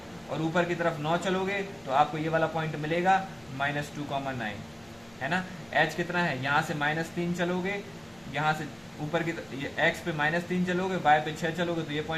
और ऊपर की तरफ 9 चलोगे तो आपको ये वाला पॉइंट मिलेगा -2,9, है ना। h कितना है, यहाँ से -3 चलोगे, यहाँ से ऊपर की x पे -3 चलोगे, y पे 6 चलोगे तो ये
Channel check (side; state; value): left; noise; rumble, 29 dB below the sound